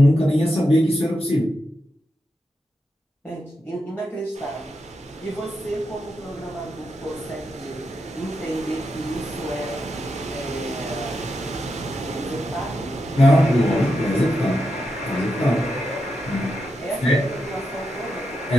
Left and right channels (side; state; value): both; normal; correlation 0.86